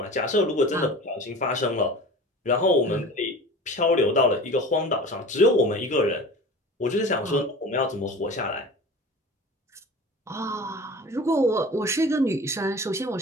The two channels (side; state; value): both; normal; correlation 0.38